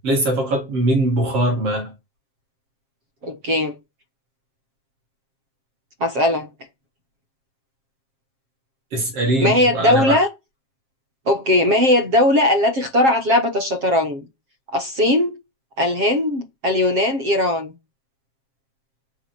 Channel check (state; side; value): late; left; 7.5 ms